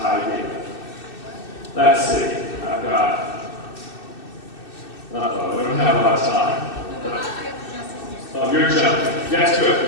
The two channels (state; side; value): late; right; 2.6 ms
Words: Let's see, I've got, we don't have a lot of time. Oh, you're jumping. Yes,